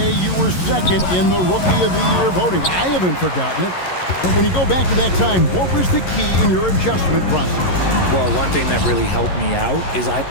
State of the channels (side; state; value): right; late; 11 ms